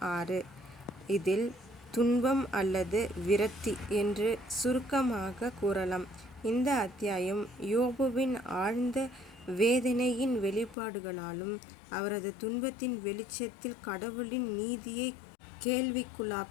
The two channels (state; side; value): drops out; right; at 10.8 s